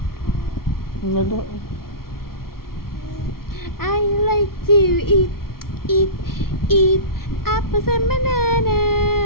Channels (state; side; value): late; right; 0.93 ms